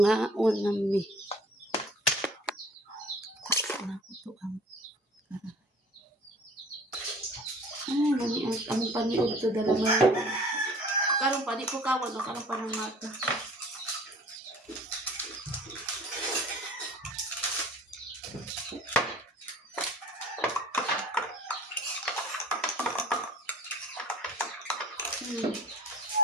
unami. Sana ko to ang karahay. Ay, nani ang paniod to dala mo. Karong pa, di ko kawan o karong pa ng mata.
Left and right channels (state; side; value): normal; both; correlation 0.48